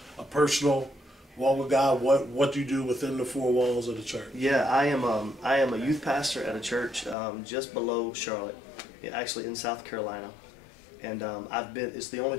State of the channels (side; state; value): right; drops out; at 7.2 s